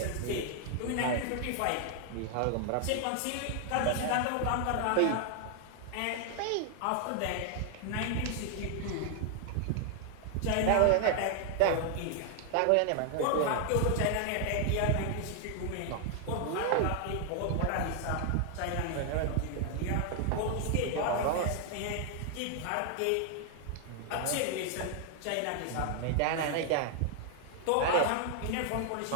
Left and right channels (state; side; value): different; both; correlation 0.00